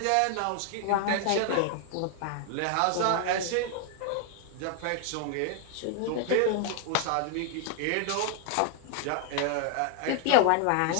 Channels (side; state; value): both; different; correlation 0.00